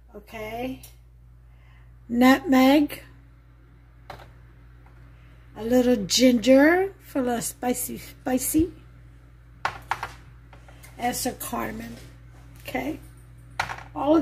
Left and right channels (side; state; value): both; identical; correlation 1.00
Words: Okay. Nutmeg. A little ginger for a little spicy. And some cardamom. Okay. All of